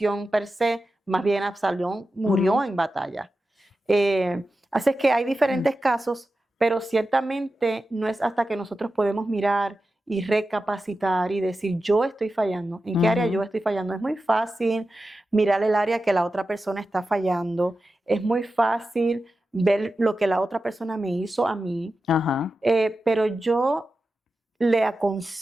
per se, más bien Absalón murió en batalla. Así es que hay diferentes casos, pero ciertamente no es hasta que nosotros podemos mirar y recapacitar y decir, yo estoy fallando. ¿En qué área yo estoy fallando? Es muy fácil mirar el área que la otra persona está fallando. Es muy fácil ver lo que la otra persona me hizo a mí. Pero yo le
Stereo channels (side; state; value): both; normal; correlation 0.92